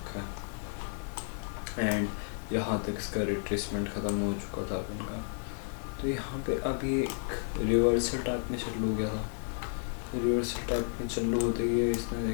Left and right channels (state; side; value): silent; right; 56 dB below the other